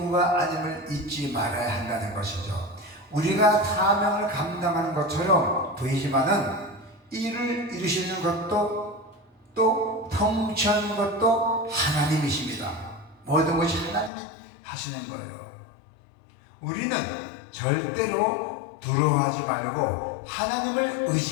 아님을 잊지 말아야 한다는 것이죠. 우리가 사명을 감당하는 것처럼 보이지만은 일을 이루시는 것도 또 통치하는 것도 하나님이십니다. 모든 것이 하나님이 하시는 거예요. 우리는 절대로 두려워하지 말고 하나님을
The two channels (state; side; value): drops out; right; at 14.1 s